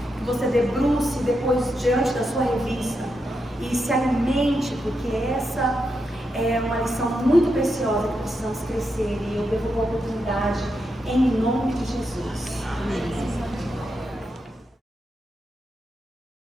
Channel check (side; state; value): both; normal; correlation 0.85